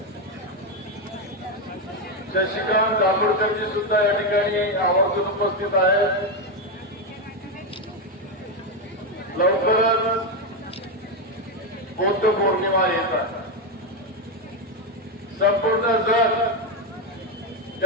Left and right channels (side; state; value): both; normal; correlation 0.08